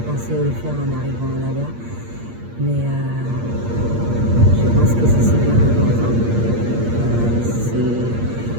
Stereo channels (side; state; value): left; late; 8.6 ms